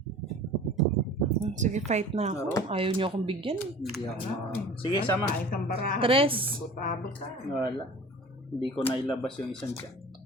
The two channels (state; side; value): normal; both; correlation 0.42